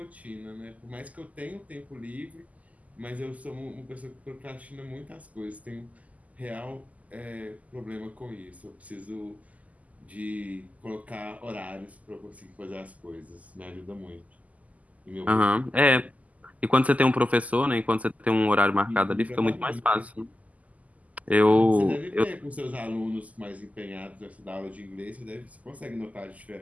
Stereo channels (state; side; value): late; left; 0.074 ms